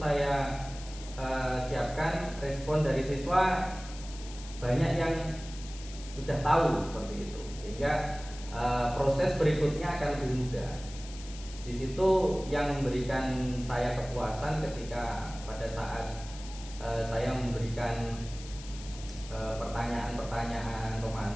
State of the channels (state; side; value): noise; left; hiss, 16 dB below the sound